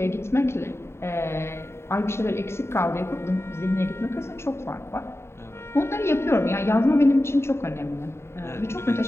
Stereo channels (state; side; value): late; right; 0.12 ms